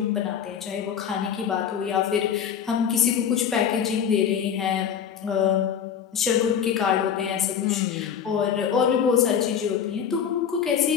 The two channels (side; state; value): right; quieter; 8.1 dB